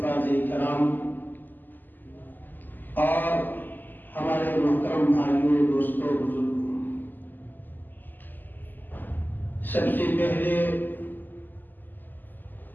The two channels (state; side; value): late; right; 0.088 ms